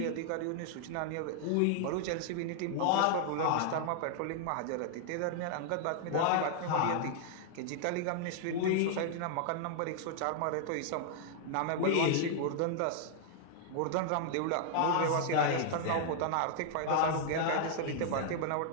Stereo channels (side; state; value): both; different; correlation -0.01